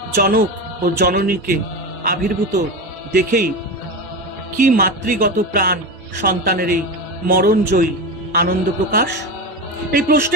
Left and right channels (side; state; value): both; normal; correlation 0.21